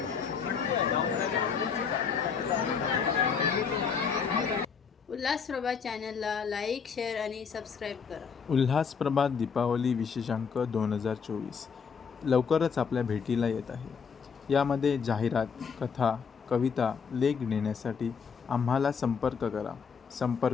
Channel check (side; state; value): right; quieter; 6.2 dB